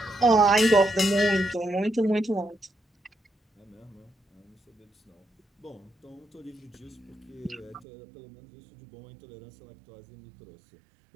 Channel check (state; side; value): drops out; left; at 7.9 s